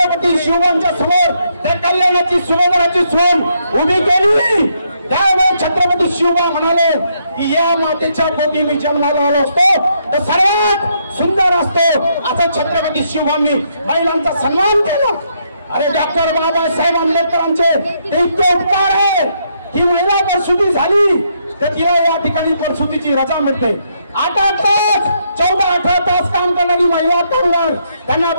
शिवबांच्या समोर त्या कल्याणाची सुभेदाराची सून उभी केली, त्यावेळेस छत्रपती शिवबा म्हणाले की या मातेच्या पोटी मी जन्माला आलो असतो तर सर्वात सुंदर असतो. असं छत्रपती शिवबांनी महिलांचा सन्मान केला. अरे डॉक्टर बाबासाहेब आंबेडकरांचे ते इतके उपकार आहे की महिला प्रसूती झाली तर तिला या ठिकाणी प्रसूतीची रजा मिळते. 8 तास 14-18 तास काम करणारी महिला कामगार त्यांना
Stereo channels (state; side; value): inverted; both; correlation -0.75